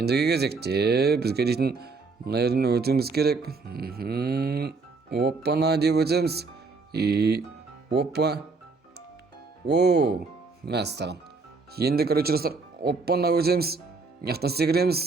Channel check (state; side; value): quieter; left; 4.2 dB